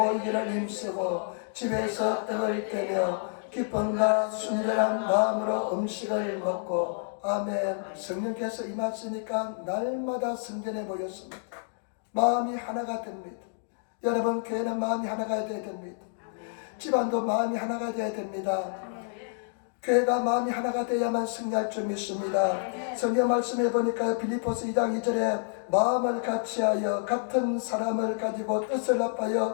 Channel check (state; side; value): silent; right; digital silence